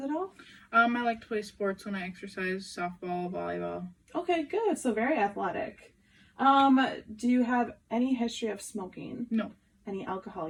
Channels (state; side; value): identical; both; correlation 1.00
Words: at all? I like to play sports when I exercise, softball, volleyball. Okay, good. So very athletic. Do you have any history of smoking? No. Any alcohol